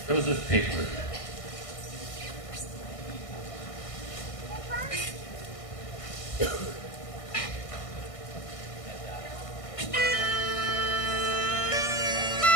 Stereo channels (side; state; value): right; late; 1.6 ms